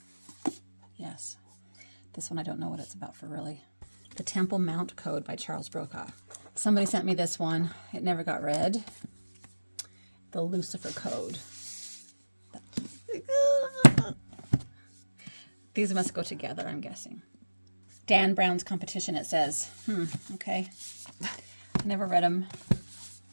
Yes. This one I don't know what it's about for really. The Temple Mount Code by Charles Brokaw. Somebody sent me this one. It never got read. The Lucifer Code. These must go together, I'm guessing. Dan Brown's Competition, it says. Okay. I never read them.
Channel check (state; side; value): inverted; both; correlation -1.00